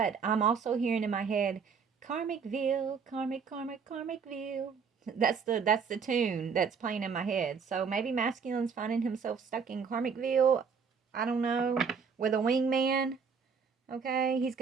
I'm also hearing in my head, Karmicville, Karmicville. That's the tune that's playing in my head. So maybe masculine's finding himself stuck in Karmicville. I don't know, with a wingman. Okay, he's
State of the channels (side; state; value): left; quieter; 5.9 dB